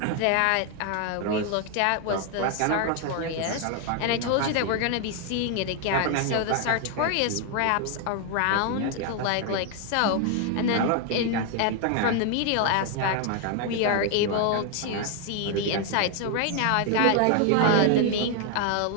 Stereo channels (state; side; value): different; both; correlation 0.01